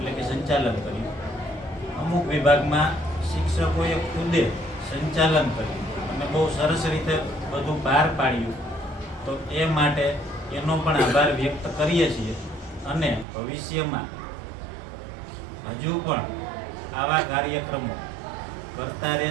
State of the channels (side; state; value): left; drops out; at 13.2 s